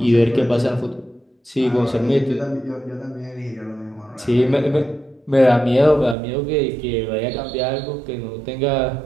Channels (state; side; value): drops out; left; at 6.2 s